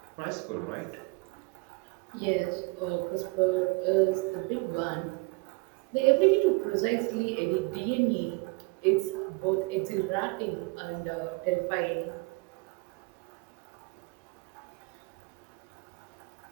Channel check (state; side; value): quieter; left; 28.8 dB